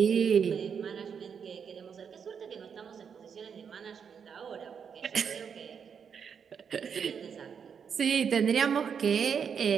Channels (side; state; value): left; quieter; 6.9 dB